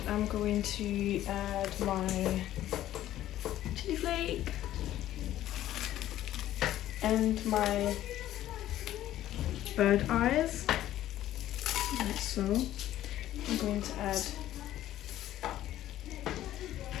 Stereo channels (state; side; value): quieter; right; 13.2 dB